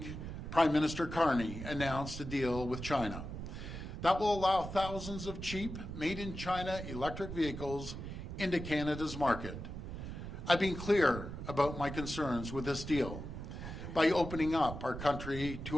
Prime Minister Carney announced a deal with China that will allow thousands of cheap, made-in-China electric vehicles into Canada's market. I've been clear about my concerns with this deal. By opening up our country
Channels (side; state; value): right; noise; rumble, 8 dB below the sound